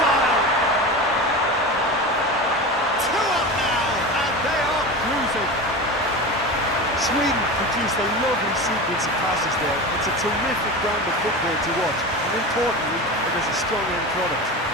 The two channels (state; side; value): normal; both; correlation 0.27